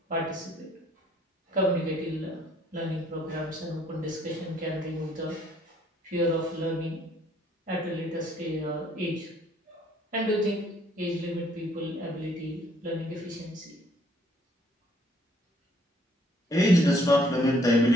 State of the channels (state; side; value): normal; both; correlation 0.63